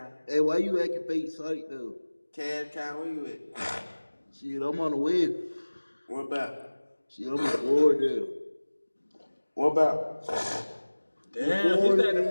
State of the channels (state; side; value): inverted; both; correlation -1.00